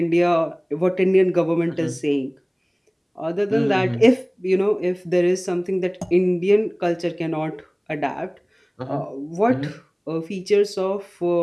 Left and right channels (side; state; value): both; identical; correlation 1.00